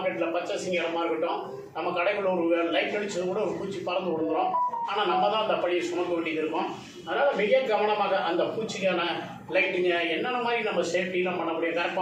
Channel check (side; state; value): both; identical; correlation 1.00